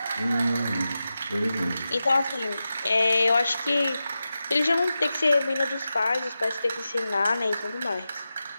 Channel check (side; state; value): both; inverted; correlation -0.92